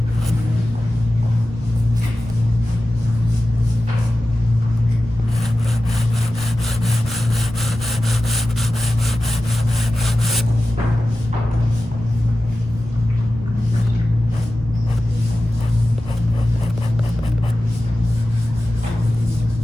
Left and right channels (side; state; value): both; normal; correlation 0.94